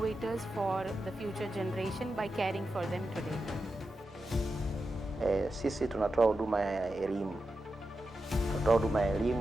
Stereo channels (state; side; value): normal; both; correlation 0.90